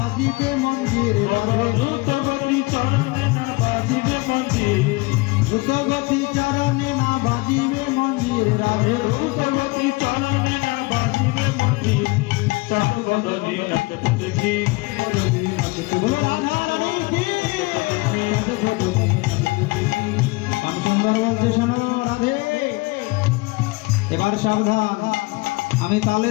মঞ্জির, দ্রুত গতি চরণে না বাজিবে মঞ্জির, দ্রুত গতি চরণে না বাজিবে মঞ্জির। রাধে দ্রুত গতি চরণে না বাজিবে মঞ্জির। চাঁদ বদনে নাচত দেখি, বলো রাধারানী কি। শ্যামসুন্দর বলছে শোনো রাধে, এবার সাবধান, আমি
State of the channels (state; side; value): quieter; right; 24.2 dB